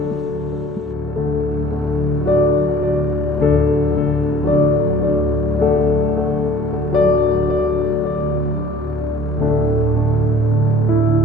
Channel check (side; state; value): both; normal; correlation 0.50